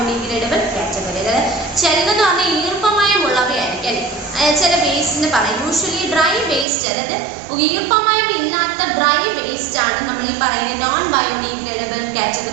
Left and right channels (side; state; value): left; drops out; at 6.7 s